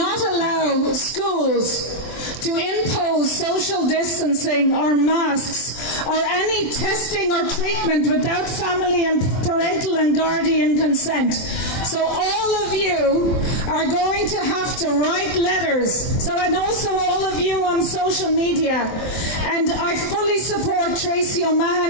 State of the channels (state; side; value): late; right; 23 ms